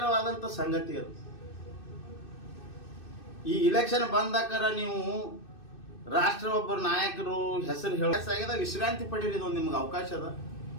ಸಂಗತಿ. ಅದು ಈ ಇಲೆಕ್ಷನ್ ಬಂದಾಕರ ನೀವು ರಾಷ್ಟ್ರ ಒಬ್ಬರು ನಾಯಕರು ಹೆಸರು ಹೇಳ ವಿಶ್ರಾಂತಿ ಪಡೀರಿ, ಇದೊಂದು ನಿಮ್ಗೆ ಅವಕಾಶ ಅದ.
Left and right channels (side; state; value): right; late; 2.6 ms